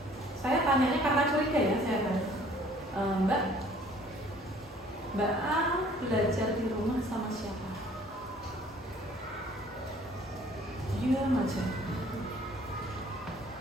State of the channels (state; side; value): normal; both; correlation 0.55